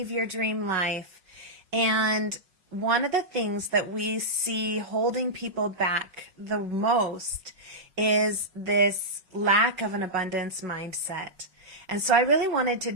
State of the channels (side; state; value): left; late; 5.4 ms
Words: your dream life. And one of the things that we see holding people back the most is this lack of an abundance mindset. And so I really wanted to